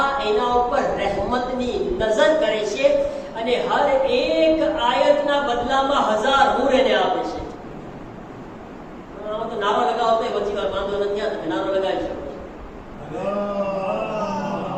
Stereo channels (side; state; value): both; identical; correlation 1.00